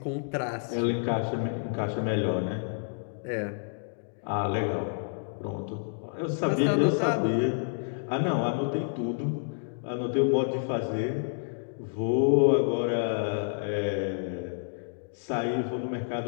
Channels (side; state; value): right; silent; digital silence